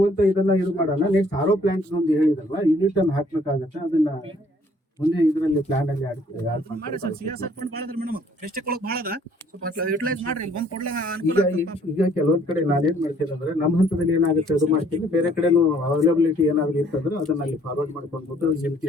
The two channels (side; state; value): both; normal; correlation 0.61